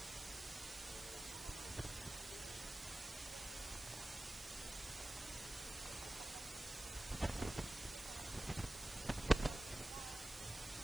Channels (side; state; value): right; noise; hiss, 12 dB below the sound